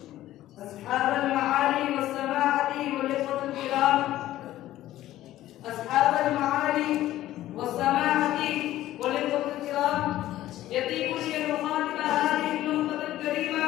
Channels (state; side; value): quieter; right; 14.3 dB